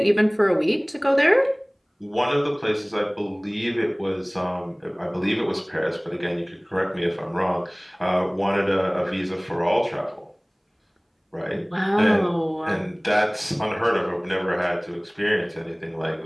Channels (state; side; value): identical; both; correlation 1.00